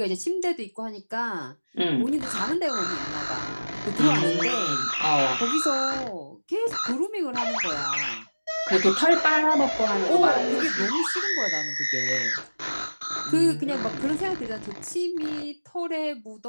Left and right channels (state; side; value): inverted; both; correlation -1.00